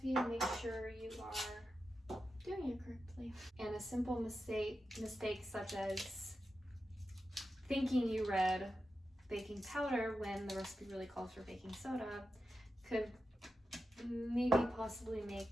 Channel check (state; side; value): normal; both; correlation 0.90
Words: and make sure you are doing it correctly. And a simple mistake such as thinking you read baking powder when the recipe really calls for baking soda could maybe possibly